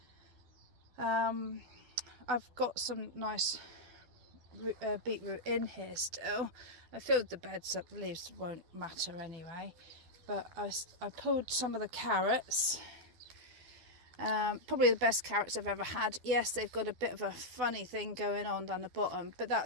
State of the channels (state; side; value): late; left; 12 ms